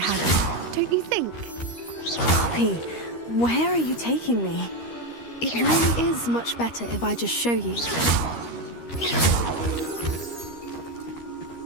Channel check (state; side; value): late; right; 13 ms